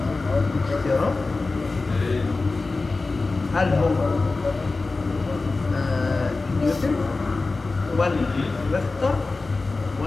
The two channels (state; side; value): quieter; right; 3.6 dB